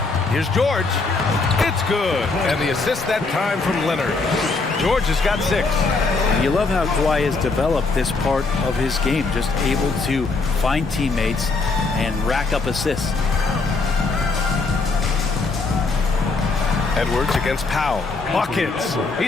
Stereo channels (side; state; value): right; quieter; 3.9 dB